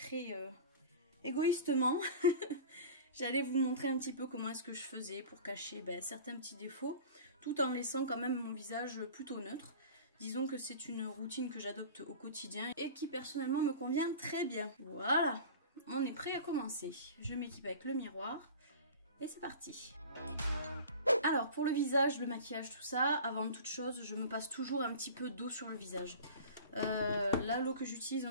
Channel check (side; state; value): both; inverted; correlation -0.38